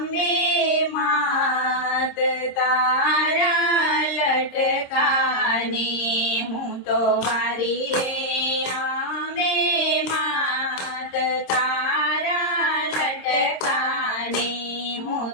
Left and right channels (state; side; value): late; right; 26 ms